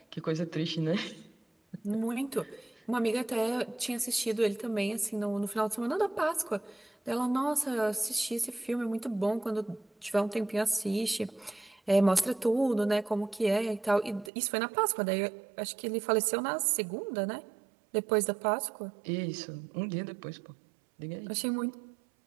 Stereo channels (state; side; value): drops out; left; at 14.3 s